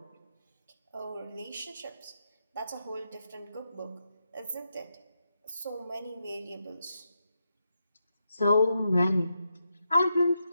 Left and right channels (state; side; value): inverted; both; correlation -0.84